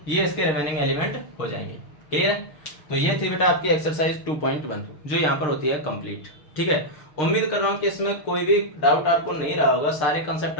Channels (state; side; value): late; right; 6.6 ms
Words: ये इसके रिमेनिंग एलिमेंट हो जाएंगे। क्लियर है? तो ये थी बेटा आपकी एक्सरसाइज 2.1 जो यहाँ पर होती है कंप्लीट। ठीक है, उम्मीद कर रहा हूँ कि इसमें कोई भी डाउट आपको नहीं रहा होगा, सारे कंसेप्ट